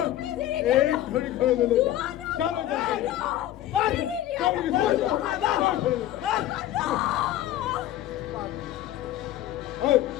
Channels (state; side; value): quieter; right; 13.2 dB